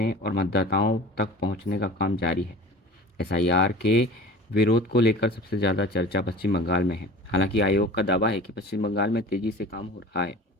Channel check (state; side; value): normal; both; correlation 0.40